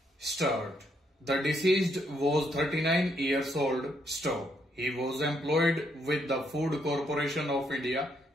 Start. The deceased was 39 years old. Stop. He was employed with the Food Corporation of India.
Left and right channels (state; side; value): normal; both; correlation 0.74